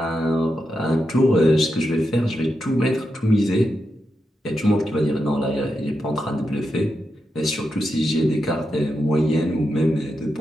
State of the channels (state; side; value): normal; both; correlation 0.86